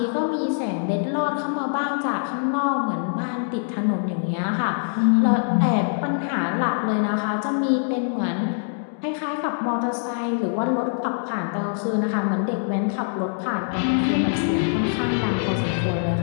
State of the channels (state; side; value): silent; right; digital silence